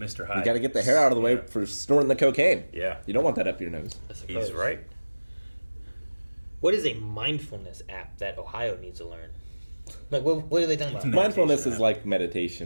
Hyde. You got to get the hair out of the way for snorting the cocaine. Yeah. You don't want that up your nose. He's right. What is a mindfulness app that Ohio needs to learn? Like, what are they talking about? Mindfulness is like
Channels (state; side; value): inverted; both; correlation -1.00